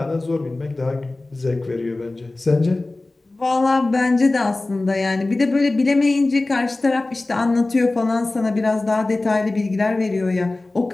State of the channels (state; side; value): quieter; right; 3.0 dB